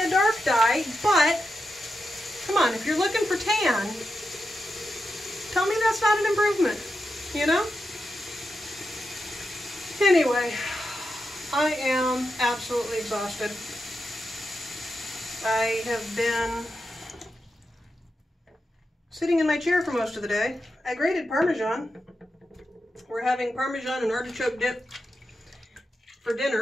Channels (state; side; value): normal; both; correlation 0.88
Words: dark dye, but come on, if you're looking for tan, tell me that's not an improvement, you know? Anyway, I am absolutely exhausted. I have been sitting in my chair for most of the day. I grated Parmesan. We're having Parmesan and artichoke dip for